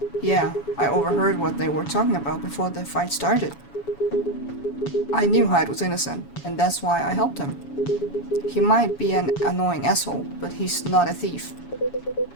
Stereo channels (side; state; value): right; late; 7.1 ms